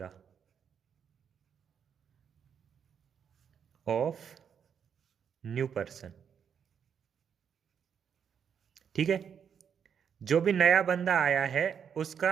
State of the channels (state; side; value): quieter; left; 7.6 dB